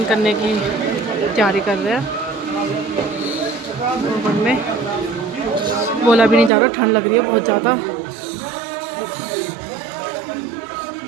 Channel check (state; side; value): drops out; left; at 6.5 s